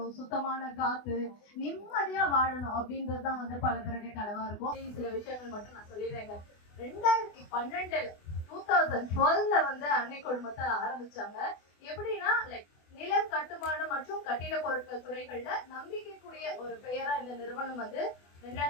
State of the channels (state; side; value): late; right; 24 ms